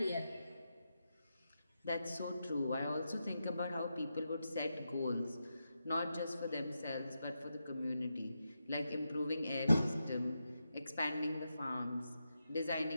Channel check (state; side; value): inverted; both; correlation -0.87